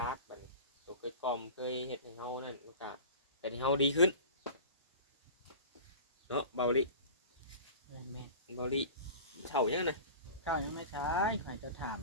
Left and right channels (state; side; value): inverted; both; correlation -0.37